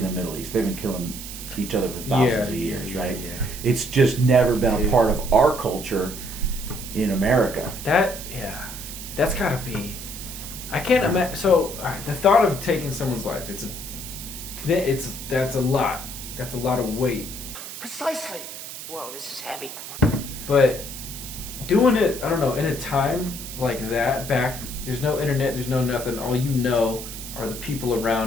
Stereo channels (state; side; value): noise; right; hiss, 10 dB below the sound